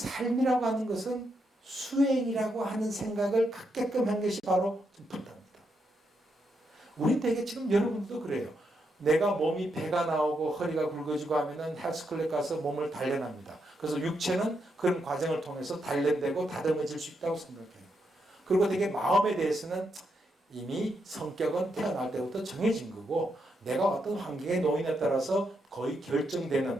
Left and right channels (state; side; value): normal; both; correlation 0.81